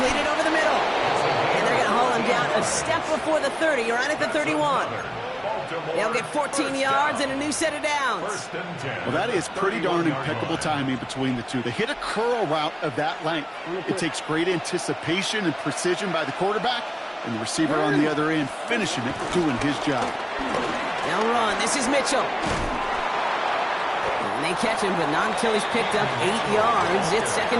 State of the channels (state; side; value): identical; both; correlation 1.00